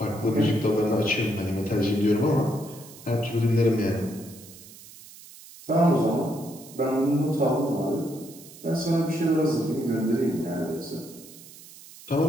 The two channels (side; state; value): right; noise; hiss, 19 dB below the sound